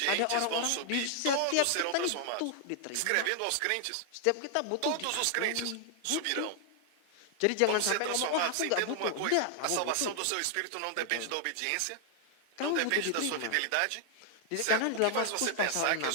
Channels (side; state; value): both; different; correlation 0.00